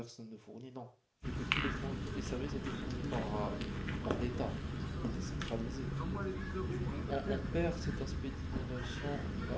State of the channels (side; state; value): both; identical; correlation 1.00